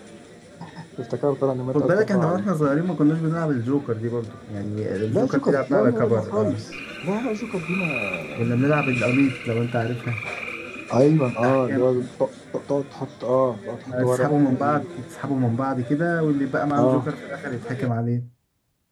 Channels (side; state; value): both; identical; correlation 1.00